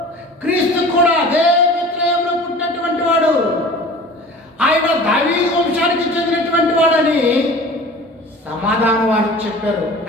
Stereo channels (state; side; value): normal; both; correlation 0.41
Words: క్రీస్తు కూడా అదే బెత్లెహేములో పుట్టినటువంటి వాడు. ఆయన దావీదు వంశానికి చెందినటువంటి వాడని సమాధానం వారికి చెప్పారు.